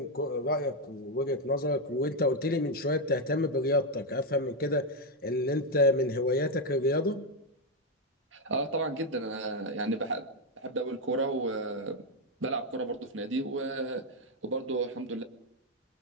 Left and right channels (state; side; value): normal; both; correlation 0.03